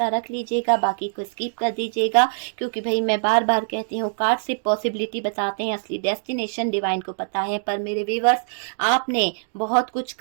रख लीजिएगा, बाकी को स्किप कर दीजिएगा, क्योंकि भाई मैं बार बार कहती हूँ कार्ड सिर्फ पॉसिबिलिटी बताते हैं, असली डेस्टिनेशन डिवाइन को पता है। पर मेरे व्यूवर्स, आपने बहुत कुछ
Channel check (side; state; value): left; silent; digital silence